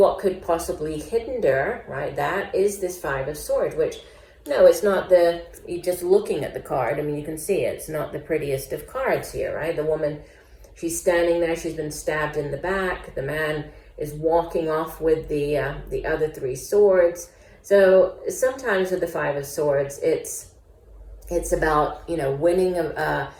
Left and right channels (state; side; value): identical; both; correlation 1.00